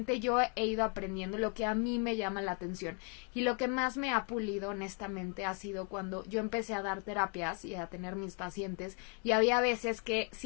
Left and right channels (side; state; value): right; quieter; 38.6 dB